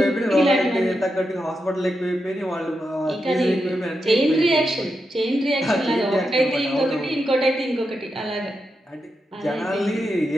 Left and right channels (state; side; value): normal; both; correlation 0.86